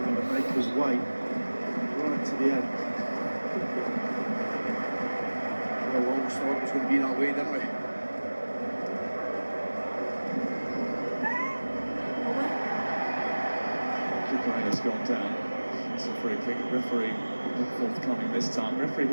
to make us wait right to the end. We always thought it was going to be that way, didn't we? Kukureya's gone down. It's a free kick. Referee not forthcoming this time. Referee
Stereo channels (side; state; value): both; inverted; correlation -1.00